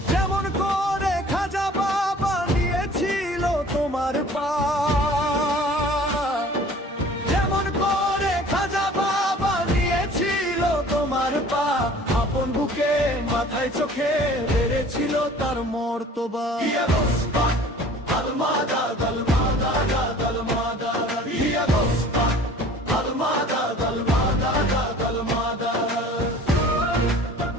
যেমন করে খাজা বাবা নিয়েছিল তোমার পা, যেমন করে খাজা বাবা নিয়েছিল তোমার পা, আপন বুকে মাথায় চোখে বেড়েছিল তার মর্তবা।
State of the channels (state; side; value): normal; both; correlation 0.48